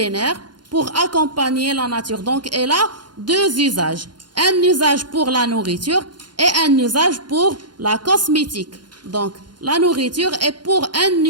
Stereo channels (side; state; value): left; late; 0.71 ms